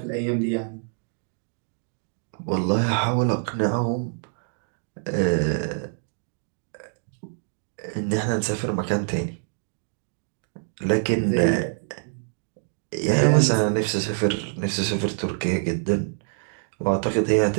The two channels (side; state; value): left; silent; digital silence